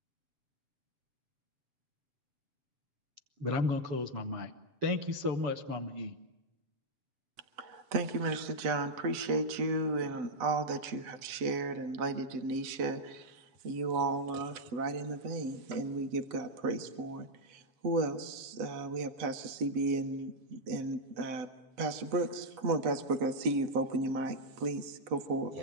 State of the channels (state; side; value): late; left; 8.0 ms